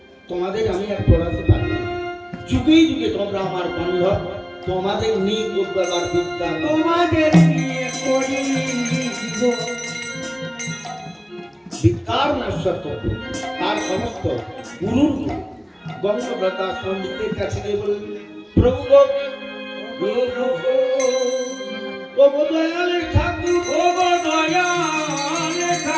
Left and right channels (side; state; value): both; identical; correlation 1.00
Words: তোমাদের আমি আর পড়াতে পারি না, যুগে যুগে তোমরা আমার বান্ধব, তোমাদের নিয়ে করবার বিদ্যা তোমাদের নিয়ে করি বিদ্যার নশ্বর তত্ত্ব। তার সমস্ত গুরুর গঙ্গব্রতা পণ্ডিতের কাছে গিয়ে বললেন, প্রভু